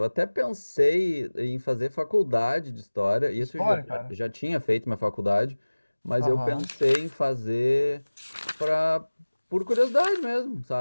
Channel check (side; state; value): both; inverted; correlation -1.00